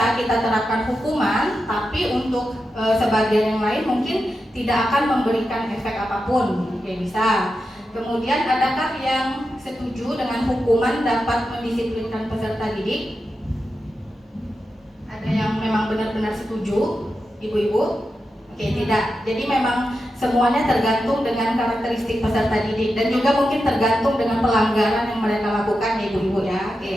kita terapkan hukuman, tapi untuk sebagian yang lain mungkin tidak akan memberikan efek apapun. Oke, bisa. Kemudian adakah yang setuju dengan hukuman dapat mendisiplinkan peserta didik? Ada yang memang benar-benar setuju, ibu-ibu? Oke, tidak. Jadi memang semuanya tergantung dengan karakteristik peserta didik dan juga mungkin tergantung dengan pelanggaran yang mereka lakukan, ibu-ibu ya.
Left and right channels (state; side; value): normal; both; correlation 0.89